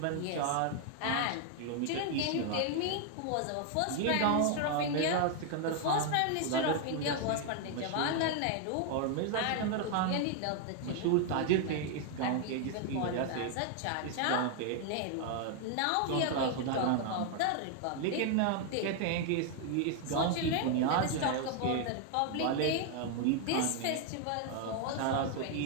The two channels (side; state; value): both; different; correlation 0.00